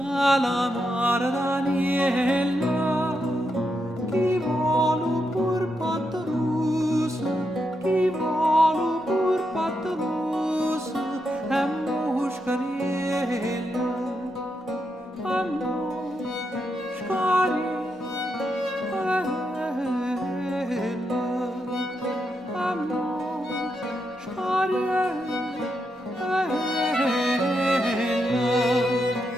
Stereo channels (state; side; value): normal; both; correlation 0.83